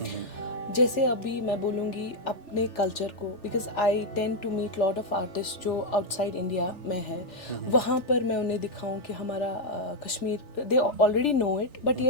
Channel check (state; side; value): late; right; 3.4 ms